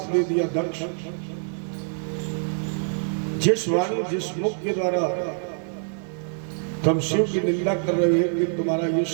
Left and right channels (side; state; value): left; silent; digital silence